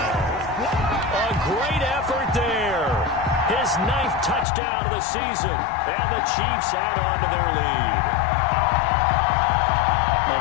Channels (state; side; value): drops out; right; at 4.5 s